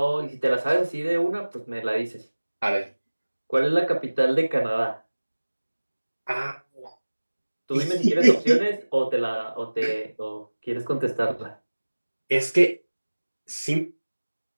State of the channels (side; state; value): both; inverted; correlation -1.00